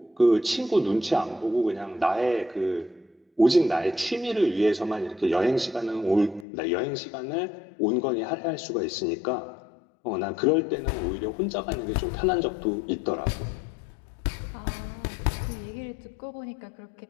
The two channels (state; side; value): drops out; right; at 6.5 s